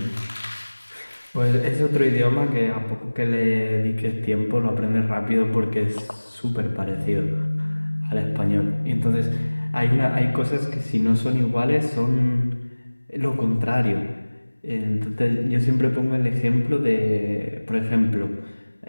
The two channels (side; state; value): both; inverted; correlation -1.00